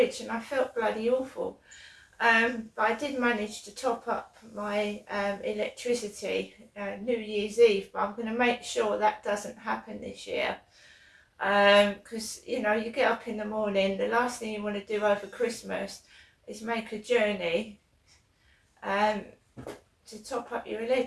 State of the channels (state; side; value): identical; both; correlation 1.00